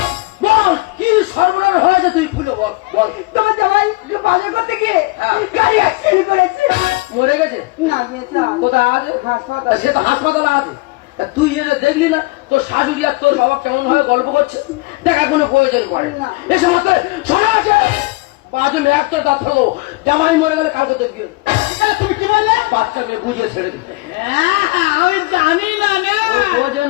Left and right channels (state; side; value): quieter; right; 23.6 dB